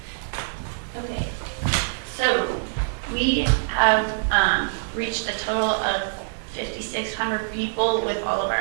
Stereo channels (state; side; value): silent; left; digital silence